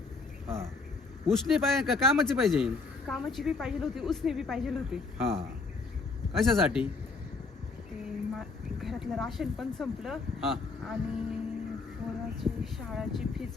हां उसने पाहिजे का कामाची पाहिजे? कामाची बी पाहिजे होती, उसने बी पाहिजे होती. हां कशासाठी? ते घरातलं राशन पण संपलं हां आणि पोराची शाळाची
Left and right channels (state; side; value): quieter; right; 4.1 dB